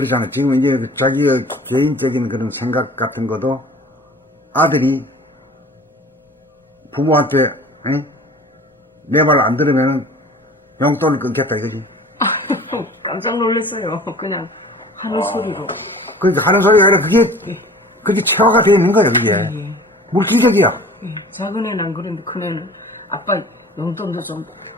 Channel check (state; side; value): normal; both; correlation 0.44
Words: 지금 이제 자기의 개인적인 그런 생각 같은 것도 아들이 부모한테 내 말 안 들으면 용돈을 끊겠다 이거지. 깜짝 놀랐어요. 그냥 하는 소리로. 그러니까 하는 소리가 아니라 그게 체화가 되어 있는 거야 그게. 물질적이야. 작은 애는 안 그런데 큰 애는 아빠 용돈도 좀